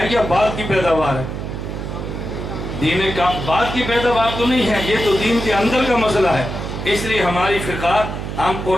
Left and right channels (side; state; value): right; noise; hum, 6 dB below the sound